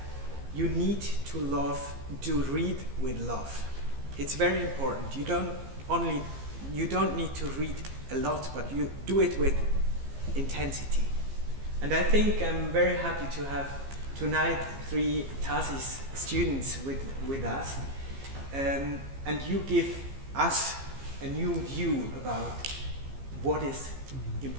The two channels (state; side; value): late; left; 15 ms